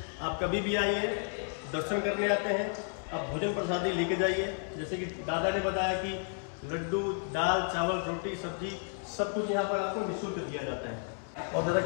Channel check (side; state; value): right; silent; 56 dB below the other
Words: आप कभी भी आइए, दर्शन करने आते हैं, आप भोजन प्रसादी लेके जाइए। जैसे कि दादा ने बताया कि लड्डू, दाल, चावल, रोटी, सब्जी सब कुछ यहाँ पर आपको निःशुल्क दिया जाता है। और दादा